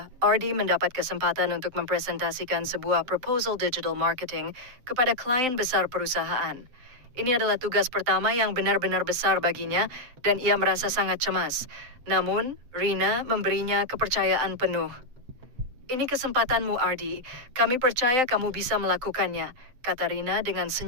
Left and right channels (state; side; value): late; left; 7.8 ms